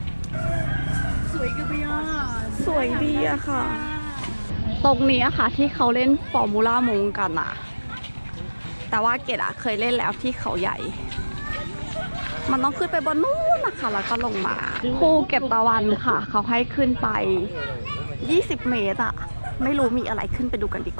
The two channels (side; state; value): both; inverted; correlation -1.00